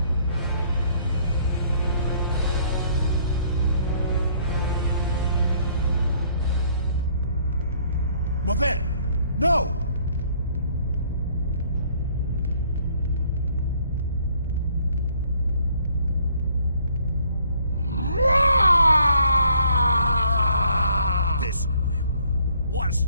Maven! No! This was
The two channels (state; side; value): inverted; both; correlation -0.63